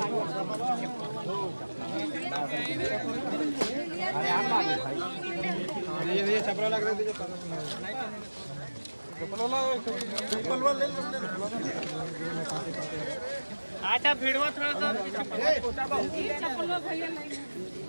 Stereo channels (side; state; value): both; inverted; correlation -1.00